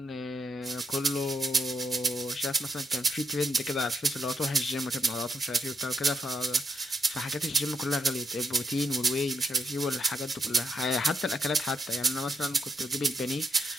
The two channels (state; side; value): normal; both; correlation 0.78